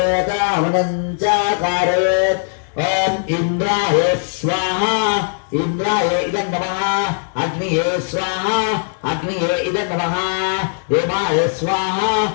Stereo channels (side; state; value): right; silent; 67 dB below the other